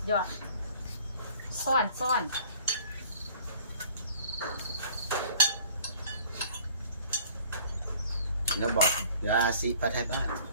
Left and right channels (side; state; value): both; inverted; correlation -0.52